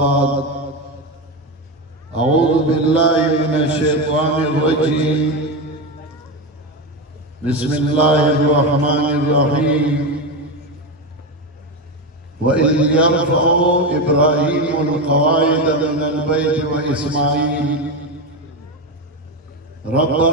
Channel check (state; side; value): normal; both; correlation 0.15